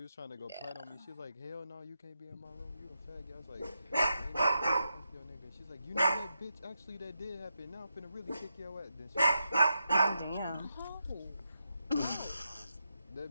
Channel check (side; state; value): both; inverted; correlation -0.86